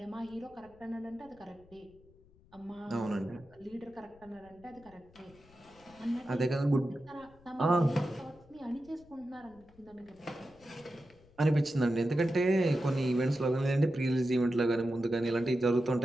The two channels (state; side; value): noise; left; rumble, 27 dB below the sound